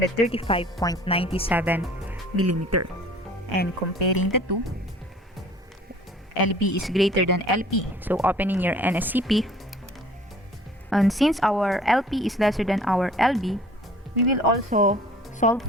millimeter. And comparing the two, LB is greater than LP. So opening your NSCP, and since our LP is lesser than our LB, we will also solve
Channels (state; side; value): normal; both; correlation 0.50